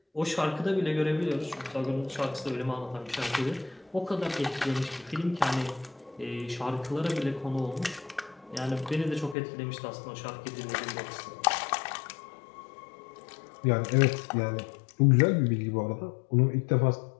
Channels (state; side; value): drops out; right; at 9.3 s